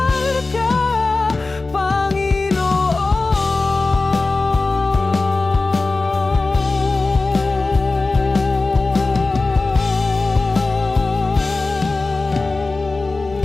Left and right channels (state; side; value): quieter; right; 3.5 dB